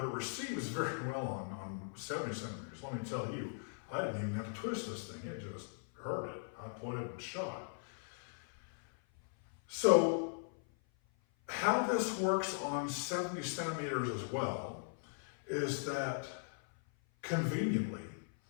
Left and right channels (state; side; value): silent; right; 52 dB below the other